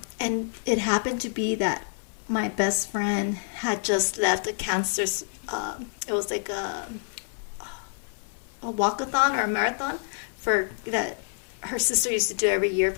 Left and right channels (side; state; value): right; silent; 57 dB below the other